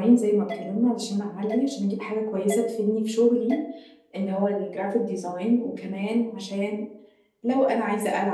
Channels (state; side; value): identical; both; correlation 1.00